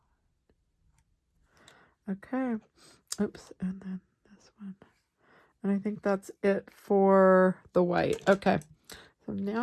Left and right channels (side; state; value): both; identical; correlation 1.00